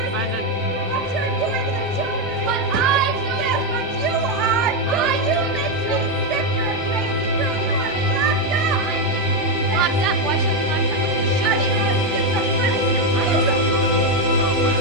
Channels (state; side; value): normal; both; correlation 0.06